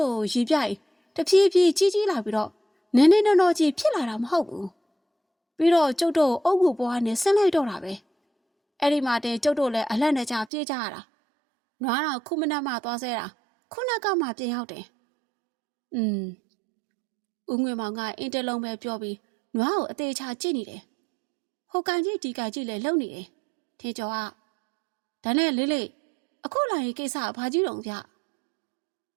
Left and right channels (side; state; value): left; drops out; at 10.5 s